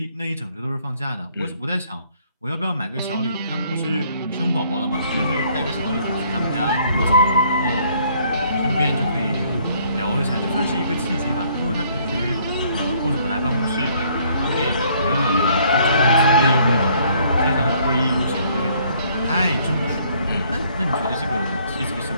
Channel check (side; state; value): both; inverted; correlation -0.63